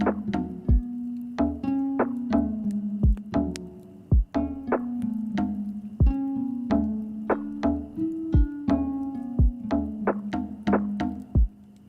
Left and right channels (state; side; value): identical; both; correlation 1.00